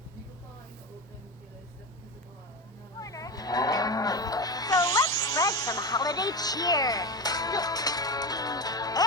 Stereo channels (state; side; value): normal; both; correlation 0.21